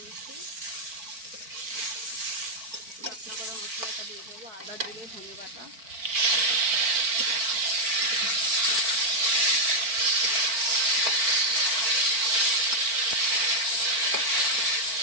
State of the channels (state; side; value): late; left; 4.4 ms